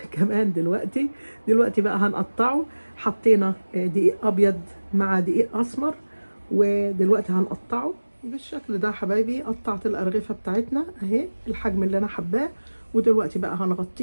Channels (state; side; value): inverted; both; correlation -1.00